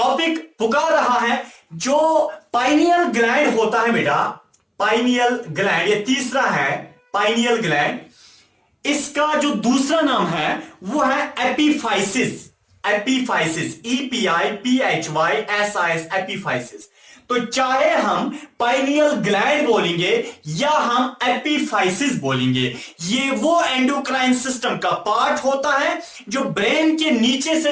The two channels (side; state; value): both; identical; correlation 1.00